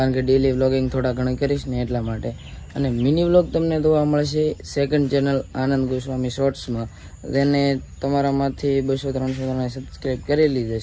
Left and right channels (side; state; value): both; identical; correlation 1.00